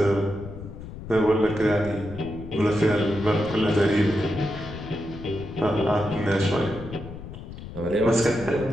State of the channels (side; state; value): left; noise; rumble, 12 dB below the sound